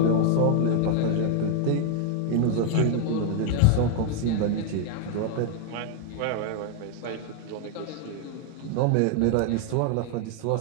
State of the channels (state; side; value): different; both; correlation 0.00